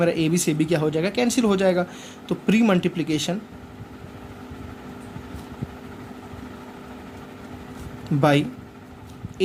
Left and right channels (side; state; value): both; identical; correlation 1.00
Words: ए बी से बी क्या हो जाएगा? कैंसिल हो जाएगा। तो pre multiplication by